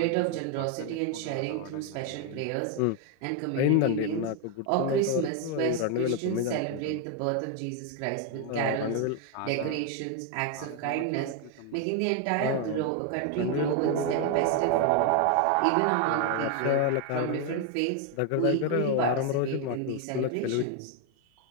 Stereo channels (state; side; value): different; both; correlation 0.01